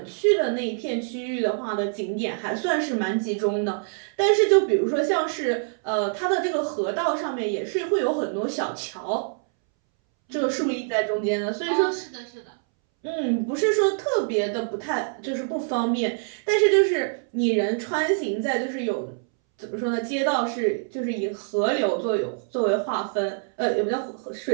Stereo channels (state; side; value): silent; left; 62 dB below the other